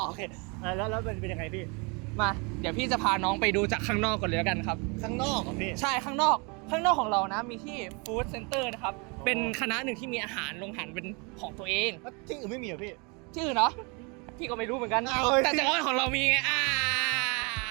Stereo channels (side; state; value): left; quieter; 31.1 dB